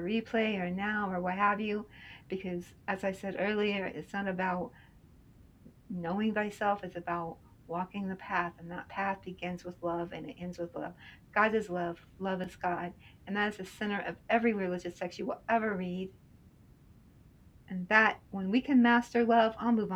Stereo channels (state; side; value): identical; both; correlation 1.00